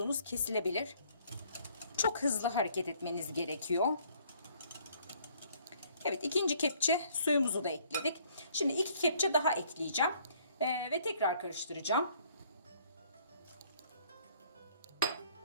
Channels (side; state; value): both; inverted; correlation -0.62